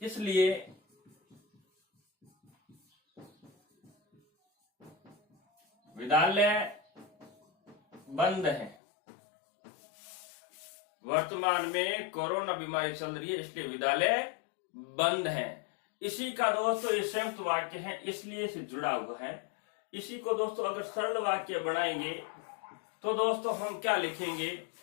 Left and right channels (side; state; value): right; drops out; at 8.8 s